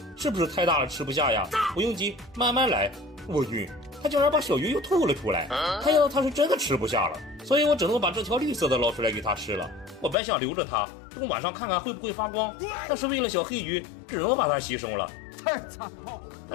是不是太大了吃不下呀？不用急，慢慢来。我晕，他竟然把小鱼又吐了出来，看样子他是真的吃不下了，所以我只能把这条绿色的捞出来给他吃了。我本想留着它，等晚上看看会不会发光，但是为了小黑鱼，只能把它牺牲了。太残暴了！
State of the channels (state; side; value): drops out; right; at 10.2 s